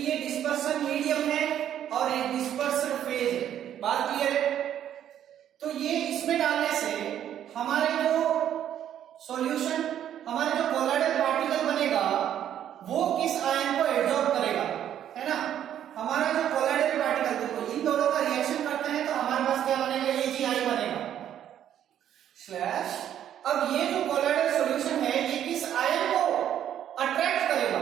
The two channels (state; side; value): quieter; left; 10.4 dB